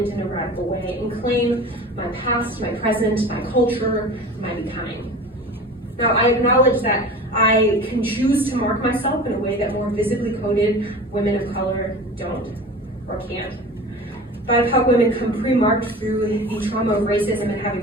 in a radical way and claim my past, my present, my culture, my becoming. Now, I acknowledge that I can choose to mark myself in a way that more visibly coded women of color don't or can't. BIPOC women come pre-marked through the trauma of racism and have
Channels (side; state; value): both; normal; correlation 0.37